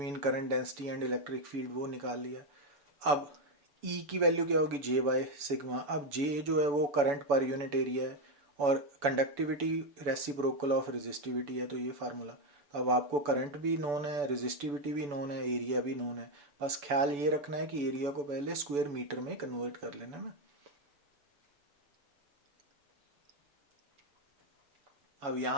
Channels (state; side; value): late; left; 7.0 ms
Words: current density and electric field वो निकाल लिया। अब E की वैल्यू क्या होगी, J बाय सिग्मा। अब J जो है वो करंट पर यूनिट एरिया है, और कंडक्टिविटी रेसिप्रोकल ऑफ रेजिस्टिविटी है, तो ये फार्मूला। अब आपको करंट भी नोन है, रेजिस्टिविटी भी नोन है, एरिया भी नोन है। बस ख्याल ये रखना है कि एरिया को पहले स्क्वायर मीटर में कन्वर्ट कर लेना ना। अब